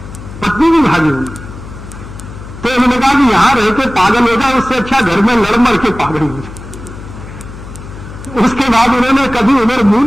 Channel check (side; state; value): left; noise; hum, 14 dB below the sound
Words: पत्नी भी भागी हुई। तो उन्होंने कहा कि यहां रह के पागल हो जाए, उससे अच्छा घर में लड़ मर के पागल हो जाए। उसके बाद उन्होंने कभी उधर मुंह